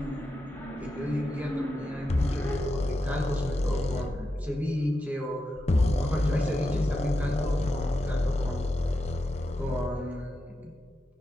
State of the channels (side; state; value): both; normal; correlation 0.88